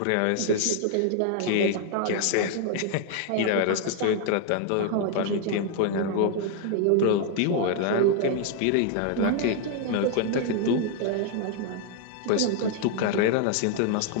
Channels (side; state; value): both; different; correlation 0.00